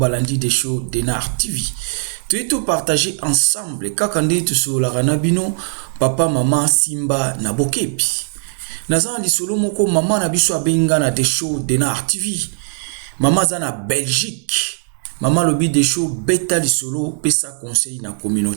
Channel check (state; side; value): silent; left; digital silence